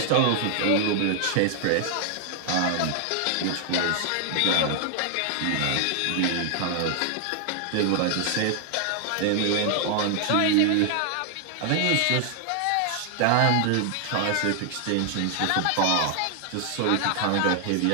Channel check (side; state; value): both; different; correlation 0.00